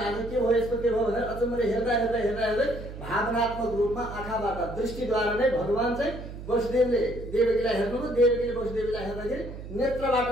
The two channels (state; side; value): noise; right; hum, 11 dB below the sound